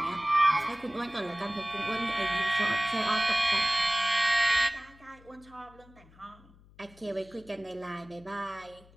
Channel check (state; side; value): noise; left; hum, 25 dB below the sound